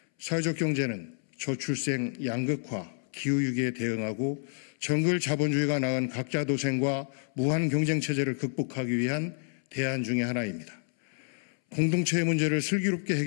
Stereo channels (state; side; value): silent; right; 58 dB below the other